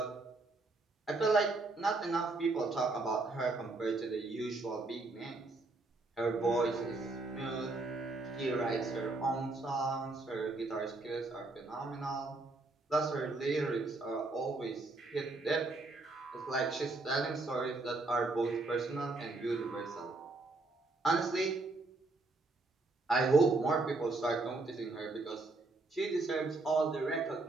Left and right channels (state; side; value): quieter; left; 3.3 dB